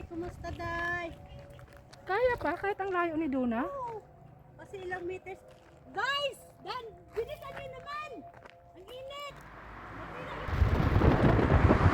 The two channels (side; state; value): both; identical; correlation 1.00